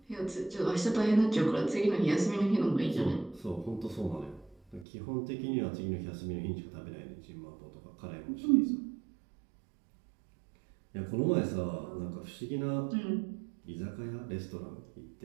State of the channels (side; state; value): left; drops out; at 4.9 s